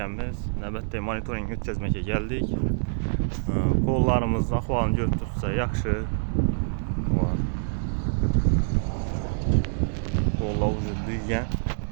növbətdə monitoring ötkəzməkə gəldik. Qollarımız ahvalını görüb tutsa yaxşı. Qollar uzun düyən.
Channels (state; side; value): silent; left; digital silence